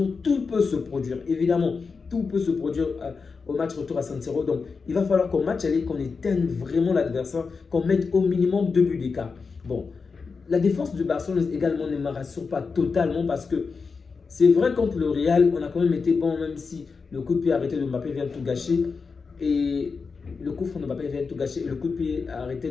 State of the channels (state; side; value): quieter; right; 4.9 dB